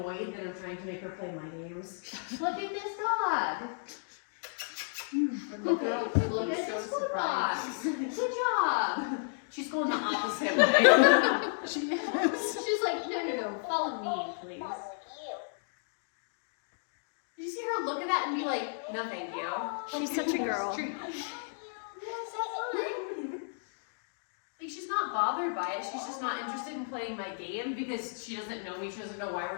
that I'm trying to make her play my games. Look at this dog. The girl Look looks at so this food surprised. box. Good job. She's going the opposite way. She is. She's like, no, follow me, please. Did you see her look at that and be like, no, thank you? She's such a girl. Yes, that's fine. Like, she's not bothered by it. She's just not interested in playing my game because she doesn't know me. She doesn't know why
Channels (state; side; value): silent; right; digital silence